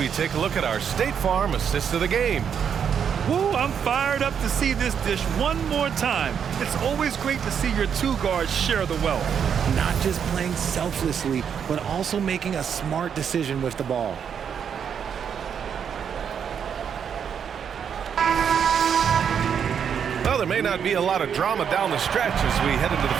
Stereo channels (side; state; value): left; quieter; 7.7 dB